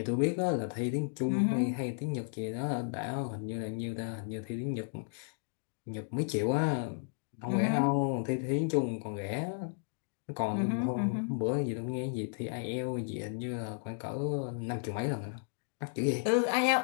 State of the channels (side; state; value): right; silent; digital silence